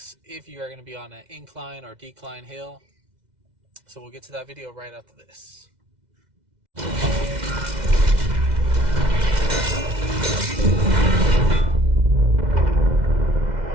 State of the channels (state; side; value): late; left; 2.0 ms